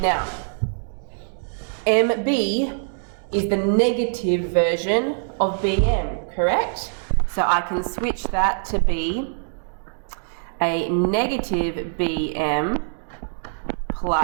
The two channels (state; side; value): silent; left; 62 dB below the other